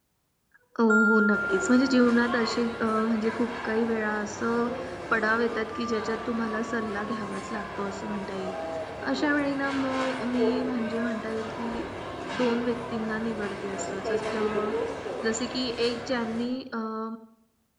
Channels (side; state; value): both; identical; correlation 1.00